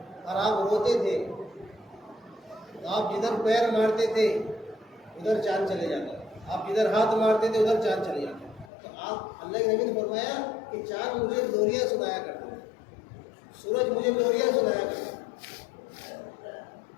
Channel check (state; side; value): drops out; right; at 8.7 s